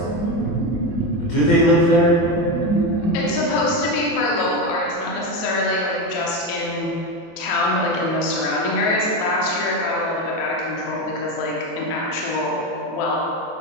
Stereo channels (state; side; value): late; right; 24 ms